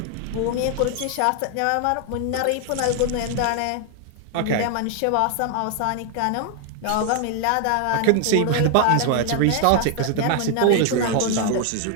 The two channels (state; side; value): different; both; correlation 0.00